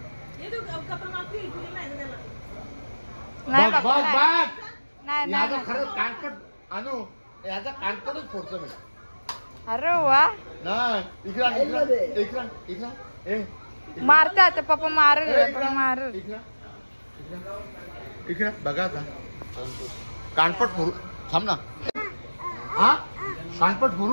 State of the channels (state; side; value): inverted; both; correlation -1.00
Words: नाही नाही. खरंच कानपट आणू, याचा कानपटच फोडतो मी. अरे वा, नाही इकडा मारते आता पप्पा. मार इकडे बघा आता. कानपट फोडू. थांब ना. हा, कानपट